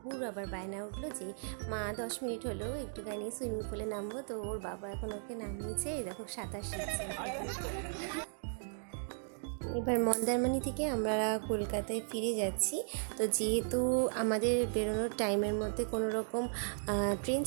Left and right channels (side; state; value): left; silent; digital silence